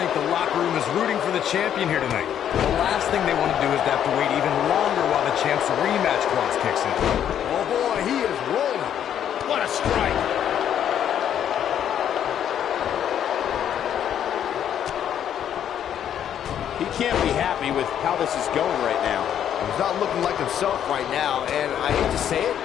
the locker room is rooting for the champion here tonight. The last thing they want to do is to have to wait even longer while the champ's rematch clause kicks in. Oh boy, he is rolling. What a strike! He can't be happy with how this is going right now. He's not looking like himself right now, and I hate to say it,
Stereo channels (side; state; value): right; quieter; 9.7 dB